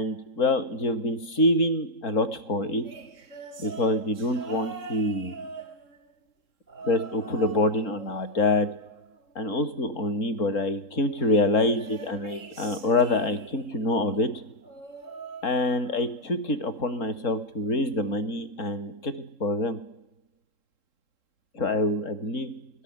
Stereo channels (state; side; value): late; right; 3.7 ms